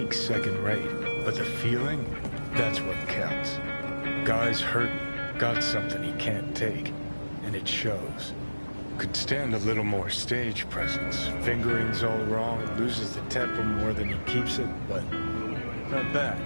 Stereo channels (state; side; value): inverted; both; correlation -1.00